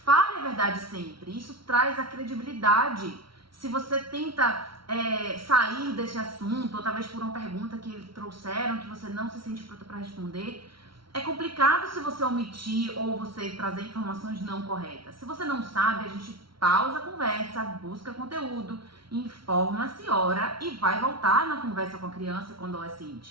a verdade sempre, isso traz a credibilidade. Se você tenta sair desse assunto, ou talvez por uma pergunta que trouxeram, que você não se sente pronta para responder, é complicado se você omitir ou você trazer informações não corretas. Se você não sabe, a gente pausa a conversa, busca conteúdo, informa-se, ora e vai voltar na conversa com a criança, com o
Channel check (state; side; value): late; left; 0.74 ms